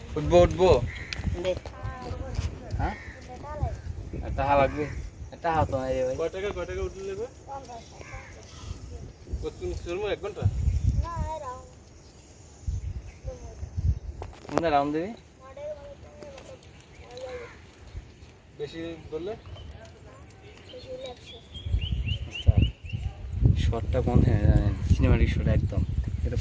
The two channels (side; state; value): both; identical; correlation 1.00